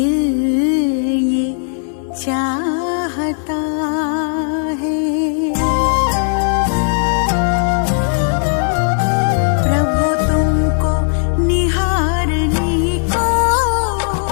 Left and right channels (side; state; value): right; silent; 58 dB below the other